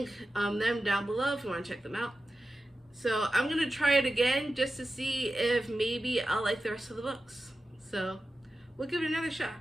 them down below if you want to check them out. So I'm going to try it again just to see if maybe I'll like the rest of the books. So we'll give it another shot.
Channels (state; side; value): normal; both; correlation 0.93